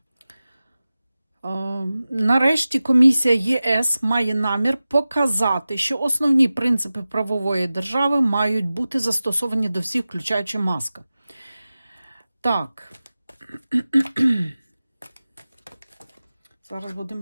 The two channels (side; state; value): both; inverted; correlation -0.96